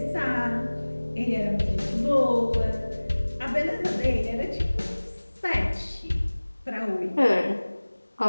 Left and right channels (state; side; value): inverted; both; correlation -1.00